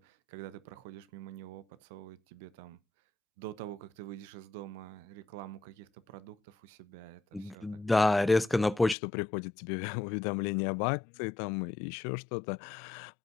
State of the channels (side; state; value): right; drops out; at 9.0 s